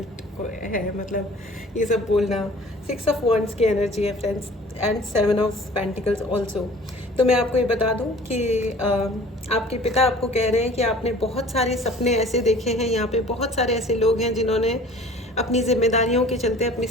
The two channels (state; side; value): normal; both; correlation 0.47